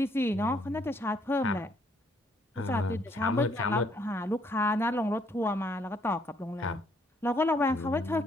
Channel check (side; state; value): both; normal; correlation 0.68